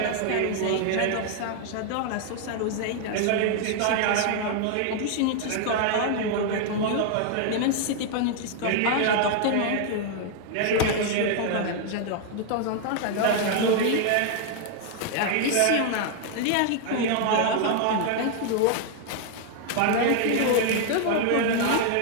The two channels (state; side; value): different; both; correlation 0.00